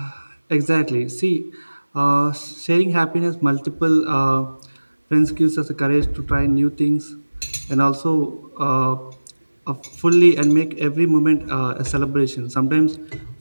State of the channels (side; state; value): both; inverted; correlation -1.00